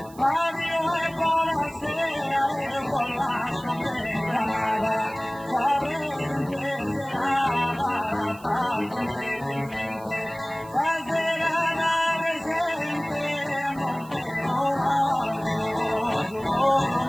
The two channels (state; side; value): noise; right; hiss, 23 dB below the sound